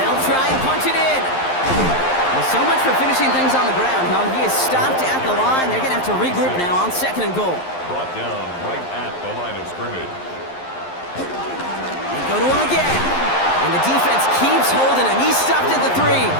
They'll try and punch it in. Well, so much for finishing things on the ground, huh? He is stopped at the line. They're going to have to regroup now on 2nd and goal. Brought down right at the line of scrimmage. They go to him again. And the defense keeps holding him. He's stopped at the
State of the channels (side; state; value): right; late; 11 ms